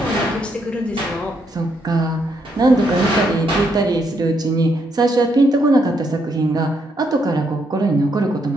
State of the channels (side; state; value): both; normal; correlation 0.76